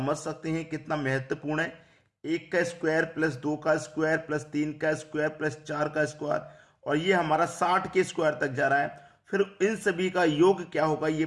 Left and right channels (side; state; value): both; identical; correlation 1.00